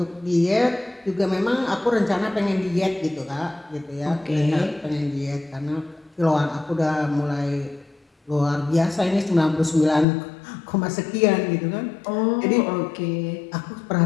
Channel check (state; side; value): drops out; right; at 10.1 s